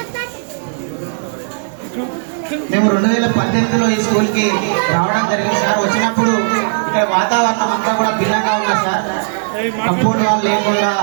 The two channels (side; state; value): left; silent; digital silence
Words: మేము 2018లో ఈ స్కూల్కి రావడం జరిగింది సార్. వచ్చినప్పుడు ఇక్కడ వాతావరణం అంతా కూడా భిన్నంగా ఉంది సార్. కంపౌండ్ వాళ్ళు లేకుండా